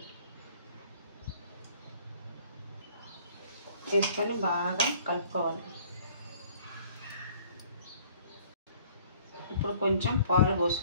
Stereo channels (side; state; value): both; inverted; correlation -0.56